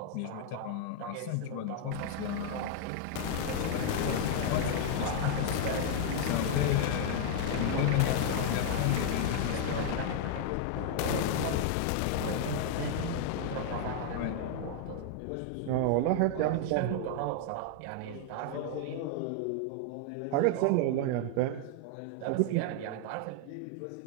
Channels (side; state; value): both; different; correlation 0.00